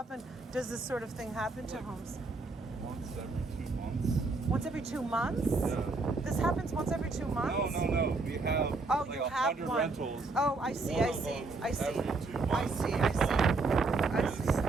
does this sort of thing happen to homes? Once every 2 months. Once every 2 months? Yeah. This happens once every 2 months? No. We have Oh, like you 100 have one. rentals. Oh, I see. One I of see. them I see. every 2 I months. see. I see. I see.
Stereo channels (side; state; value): left; quieter; 3.7 dB